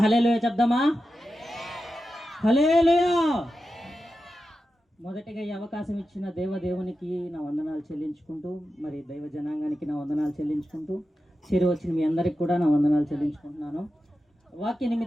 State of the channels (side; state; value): both; normal; correlation 0.91